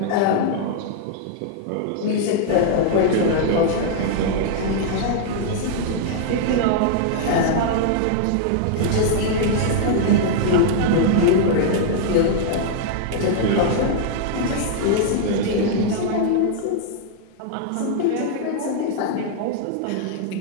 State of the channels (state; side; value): different; both; correlation -0.01